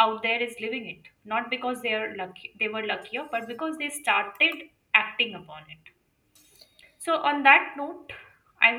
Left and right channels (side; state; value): both; identical; correlation 1.00